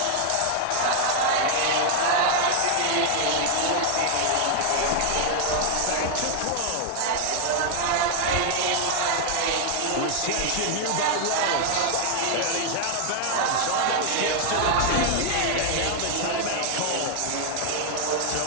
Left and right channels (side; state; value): both; different; correlation 0.00